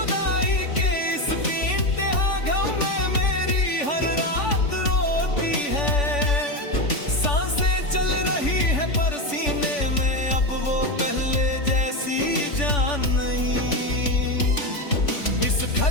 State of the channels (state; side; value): late; right; 3.5 ms